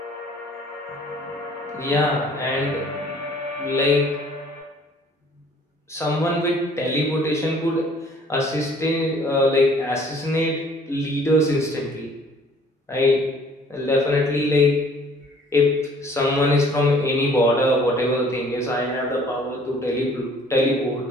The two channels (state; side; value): normal; both; correlation 0.56